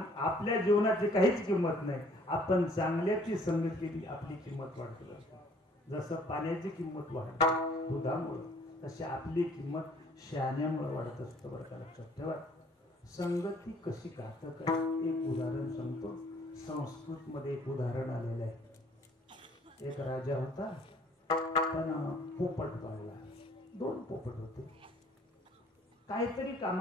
जीवनाची काहीच किंमत नाही. आपण चांगल्याची संगत केली आपली किंमत वाढते. जसं पाण्याची किंमत वाढते दुधामुळं तशी आपली किंमत शहाण्यामुळे वाढत असतं. बरं का लक्षात ठेवा. संगती कशी घातक आहे एक उदाहरण सांगतो. संस्कृत मध्ये एक उदाहरण आलेलं आहे. एक राजा होता पण पोपट पाळला. 2 पोपट होते. काहीतरी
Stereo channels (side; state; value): both; normal; correlation 0.58